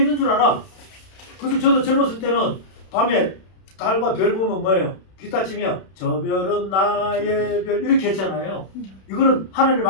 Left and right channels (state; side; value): late; right; 31 ms